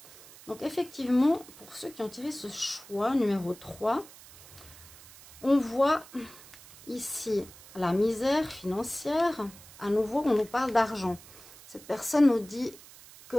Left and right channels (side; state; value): right; noise; hiss, 20 dB below the sound